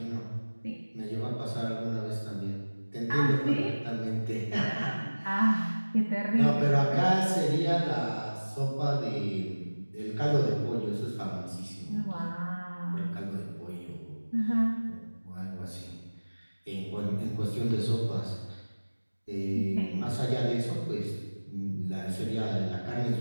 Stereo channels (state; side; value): inverted; both; correlation -1.00